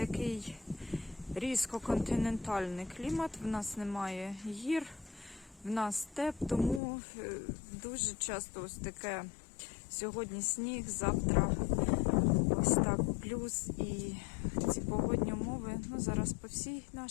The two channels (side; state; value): right; drops out; at 6.8 s